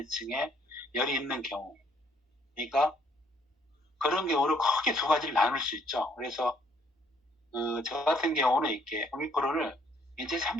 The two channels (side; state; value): both; normal; correlation 0.65